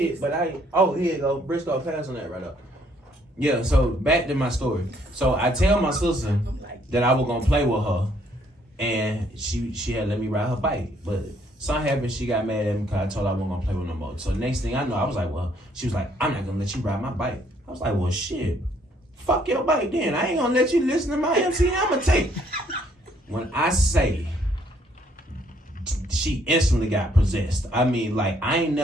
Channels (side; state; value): both; normal; correlation 0.66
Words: but here you go. Briscoe, pass on that right up. Yeah, so back to my story. So I tell my sister that I was gonna play with her, and she had let me ride her bike. But something happened, she got mad at me because I told her I wasn't gonna play with no more. So next thing I know, I was like, well, she was like, I'm not gonna let you ride my bike. I was like, well, shit, fuck your bike then. I ain't gonna let you listen to my MC Hammer tape. When I say she instantly got possessed. I mean, like, I ain't